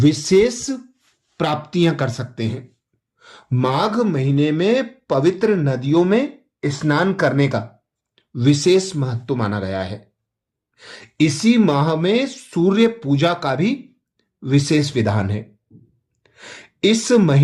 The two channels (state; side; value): identical; both; correlation 1.00